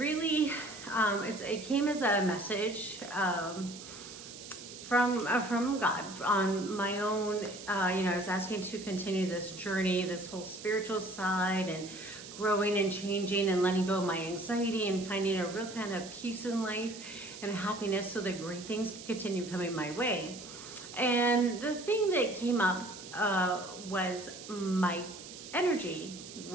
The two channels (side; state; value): right; noise; hiss, 14 dB below the sound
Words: it came as a message from God on my own. I was asking to continue this journey, this whole spiritual side, and growing and changing and letting go of my anxiety and finding a real kind of peace in life and happiness so that great things can continue coming my way. And the thing that came up was my energy